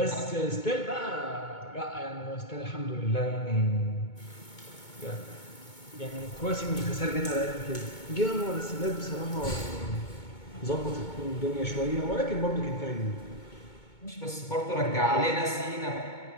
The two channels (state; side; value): late; right; 2.2 ms